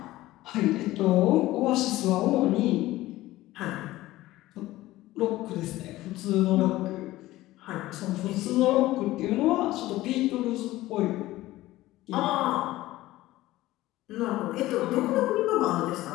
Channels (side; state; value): right; quieter; 16.8 dB